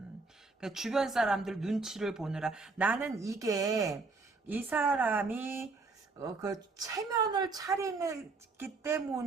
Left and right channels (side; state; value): left; quieter; 3.9 dB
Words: 주변 사람들 눈치를 보느라 나는 이게 이 사람이 그 체면을 차리기